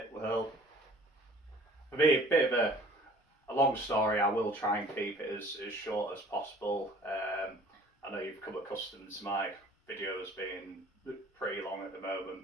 Well, for me, a bit of a long story. I will try and keep it as short as possible. I know you've come accustomed to my videos being pretty long at the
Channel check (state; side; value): normal; both; correlation 0.51